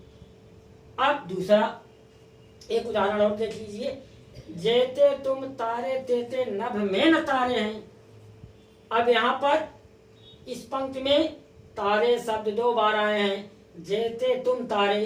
अब दूसरा एक उदाहरण और देख लीजिए, जेते तुम तारे तेते नभ में न तारे हैं। अब यहाँ पर इस पंक्ति में तारे शब्द दो बार आए हैं, जेते तुम तारे,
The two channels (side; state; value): both; identical; correlation 1.00